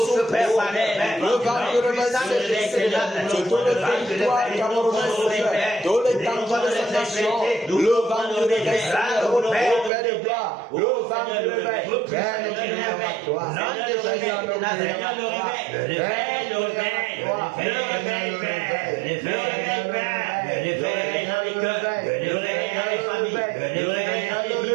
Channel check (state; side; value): drops out; left; at 9.9 s